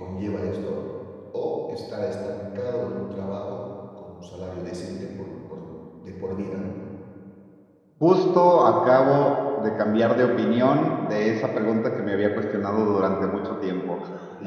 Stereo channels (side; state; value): both; identical; correlation 1.00